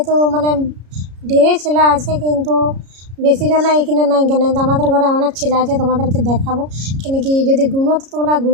ঢেরে ছেলে আছে, কিন্তু বেশি জন এখানে নাই কেন, তো আমাদের ঘরে অনেক ছেলে আছে, তোমাদেরকে দেখাবো। কেন কি যদি গুনো তো তোমরা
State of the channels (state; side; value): late; left; 33 ms